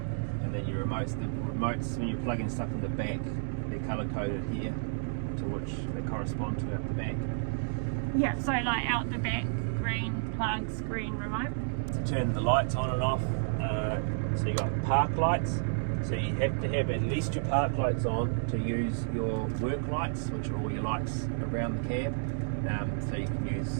And then your remotes. The remotes, when you're plugging stuff in the back, they're colour coded here to which they correspond to out the back. Yeah, so like out the back, green plugs, green remote. To turn the lights on and off, so you got park lights. So you have to have at least your park lights on to use your work lights, which are all your lights around the cab. So you can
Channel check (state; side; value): silent; left; digital silence